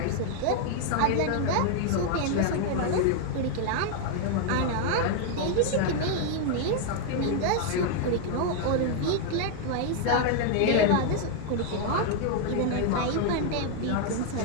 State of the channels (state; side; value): different; both; correlation 0.00